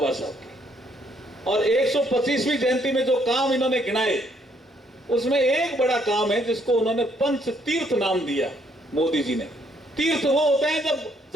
साहब की, और 125वीं जयंती में जो काम इन्होंने गिनाए, उसमें एक बड़ा काम है जिसको उन्होंने पंच तीर्थ नाम दिया मोदी जी ने। तीर्थ वो होते हैं जब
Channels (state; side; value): normal; both; correlation 0.69